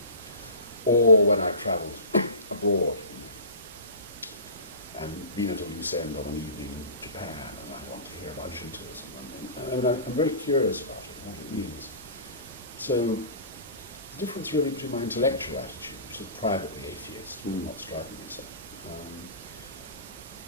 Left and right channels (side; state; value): both; inverted; correlation -0.34